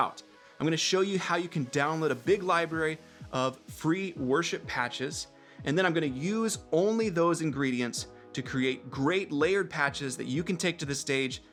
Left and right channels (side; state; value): both; identical; correlation 1.00